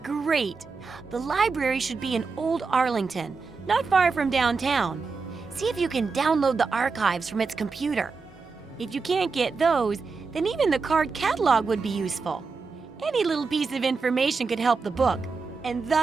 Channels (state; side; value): quieter; left; 4.6 dB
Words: Great! The library should be in Old Arlington, not far from downtown. See if you can download the archives from its computer. If you can't get those, then even the card catalog would be useful. Any little piece of information could help the book, and